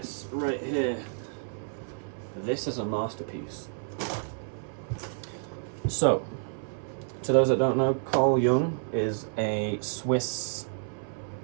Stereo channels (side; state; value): left; silent; 58 dB below the other